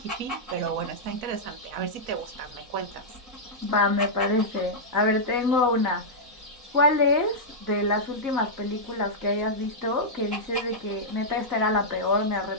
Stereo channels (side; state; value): left; late; 4.0 ms